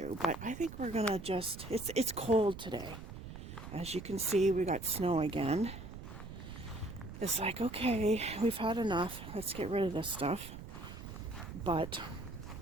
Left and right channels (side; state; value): right; noise; rumble, 11 dB below the sound